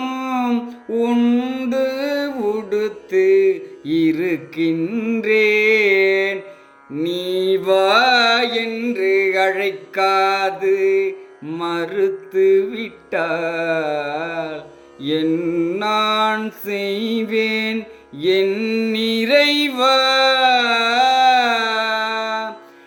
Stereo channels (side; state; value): both; identical; correlation 1.00